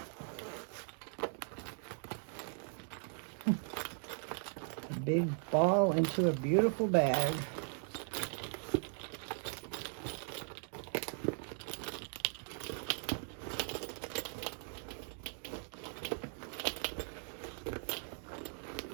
A big ball into a beautiful bag.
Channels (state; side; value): silent; left; 52 dB below the other